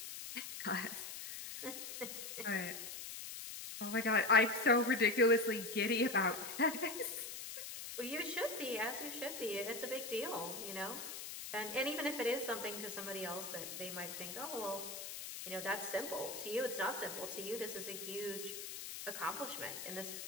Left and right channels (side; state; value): left; noise; hiss, 8 dB below the sound